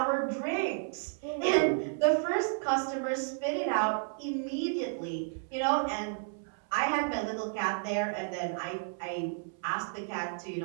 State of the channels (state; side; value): silent; left; 56 dB below the other